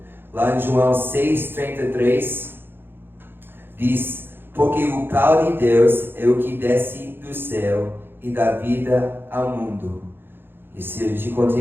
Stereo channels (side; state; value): left; late; 0.10 ms